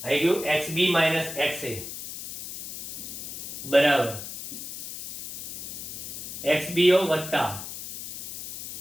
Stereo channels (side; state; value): left; noise; hiss, 9 dB below the sound